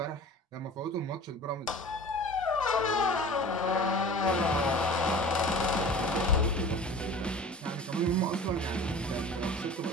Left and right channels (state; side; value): normal; both; correlation 0.40